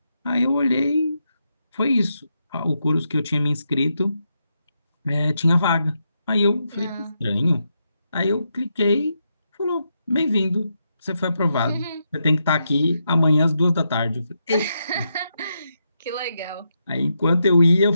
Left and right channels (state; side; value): inverted; both; correlation -0.83